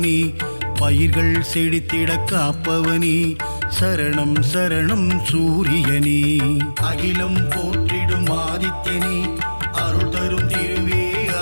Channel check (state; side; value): inverted; both; correlation -1.00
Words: பயிர்கள் செழித்திட காப்பவனே சரணம் சரணம் சூரியனே அகிலம் போற்றிடும் ஆதித்யனே அருள் தரும் திருவே